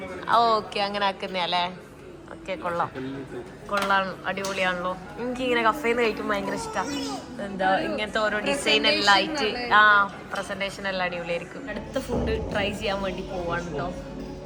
ഓക്കെ, അങ്ങനെ ആക്കുന്നല്ലേ. ഓക്കെ, കൊള്ളാം, അടിപൊളിയാണല്ലോ. എനിക്കിങ്ങനെ കഫേന്ന് കഴിക്കുമ്പോൾ ഭയങ്കര ഇഷ്ടമാണ്. എന്താ ഇങ്ങനത്തെ ഓരോ ഡിസൈൻ എല്ലാം ആയിട്ട് പ്രസന്റേഷൻ എല്ലാം അടിപൊളിയായിരിക്കും. അടുത്ത ഫുഡ് ട്രൈ ചെയ്യാൻ വേണ്ടി പോവാണ് കേട്ടോ.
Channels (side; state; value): both; identical; correlation 1.00